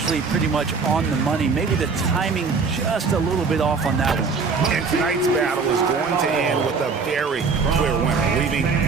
pretty much on the money. Maybe the timing just a little bit off on that one. And tonight's battle is going to end with a very clear winner,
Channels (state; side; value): quieter; left; 4.9 dB